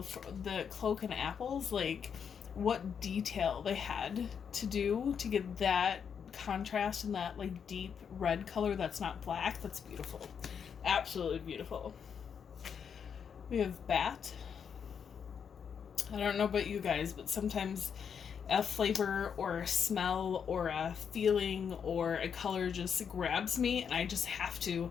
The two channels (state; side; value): quieter; right; 7.2 dB